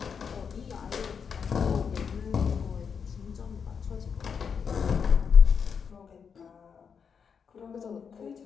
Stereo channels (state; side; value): quieter; right; 6.5 dB